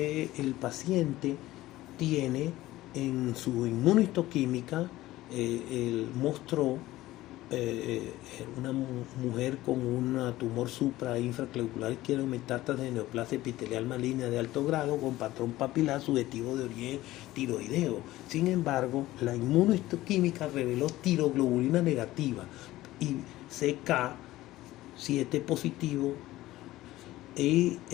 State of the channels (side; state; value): right; quieter; 16.6 dB